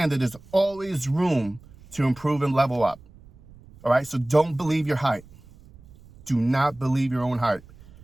that there's always room to improve and level up. All right. So don't believe your hype. Do not believe your own hype.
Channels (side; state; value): right; noise; rumble, 23 dB below the sound